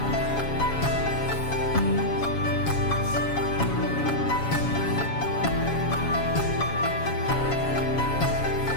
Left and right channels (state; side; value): late; right; 7.2 ms